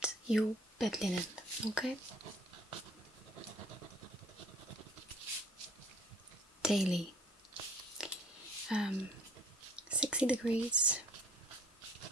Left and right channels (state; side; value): normal; both; correlation 0.54